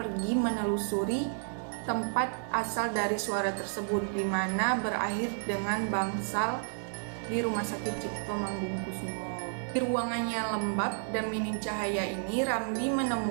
menelusuri tempat asal dari suara tersebut, di mana berakhir dengan bangsal di Rumah Sakit Cipto Mangunkusumo. Di ruangan yang lembab dan minim cahaya ini, Ramli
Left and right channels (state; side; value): silent; left; digital silence